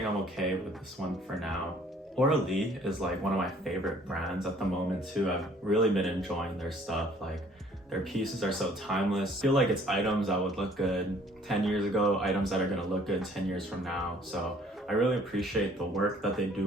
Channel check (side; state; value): both; normal; correlation 0.57